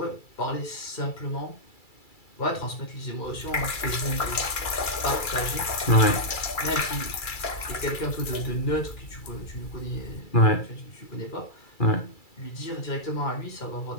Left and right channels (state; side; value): late; right; 2.3 ms